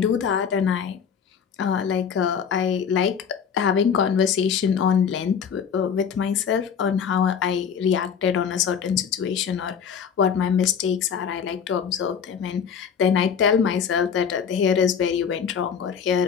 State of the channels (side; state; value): right; quieter; 7.2 dB